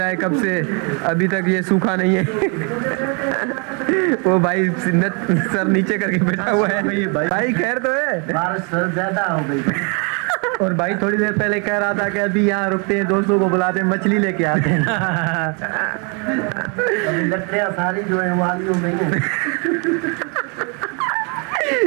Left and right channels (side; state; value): left; quieter; 35.1 dB